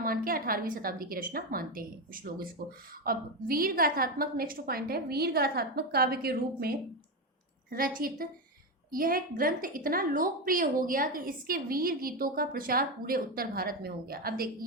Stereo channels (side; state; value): both; normal; correlation 0.13